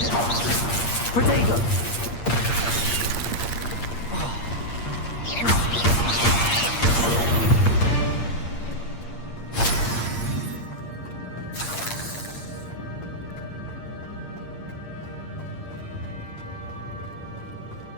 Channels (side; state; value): right; late; 8.6 ms